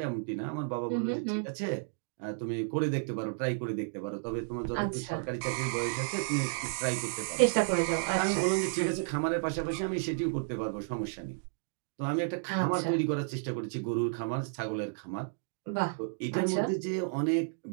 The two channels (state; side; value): silent; left; digital silence